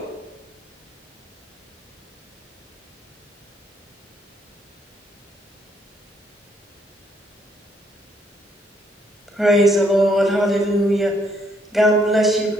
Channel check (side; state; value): both; normal; correlation 0.70